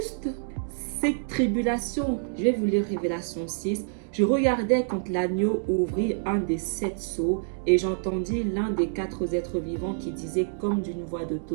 cette tribulation. Je vais vous lire Révélation 6. Je regardais quand l'agneau ouvrit un des 7 sceaux et j'entendis l'un des 4 êtres vivants qui disait comme d'une voix de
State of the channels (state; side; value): silent; left; digital silence